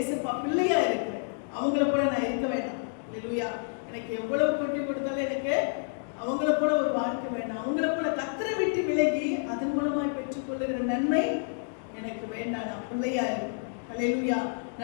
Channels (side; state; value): right; silent; digital silence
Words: பிள்ளையா இருக்கிறேன். அவங்கள போல நான் இருக்க வேண்டாம். ஹல்லேலூயா. எனக்கு எவ்வளவு கொட்டி கொடுத்தாலும் எனக்கு அவங்கள போல ஒரு வாழ்க்கை வேண்டாம். அவங்கள போல கர்த்தரை விட்டு விலகி அதன் மூலமாய் பெற்றுக்கொள்ளுகிற நன்மை எனக்கு வேண்டாம். நான் பிள்ளையா இருக்கேன். ஹல்லேலூயா.